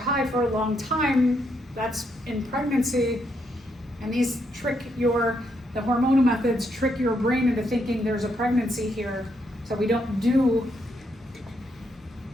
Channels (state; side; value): normal; both; correlation 0.77